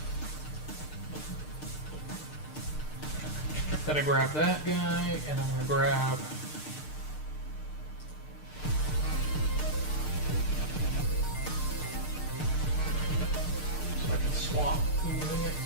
Gotta grab that guy, and I'm gonna grab so I can swap using it.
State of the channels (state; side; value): late; right; 6.6 ms